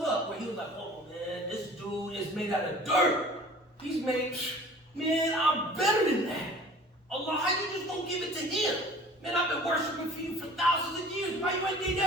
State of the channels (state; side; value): normal; both; correlation 0.46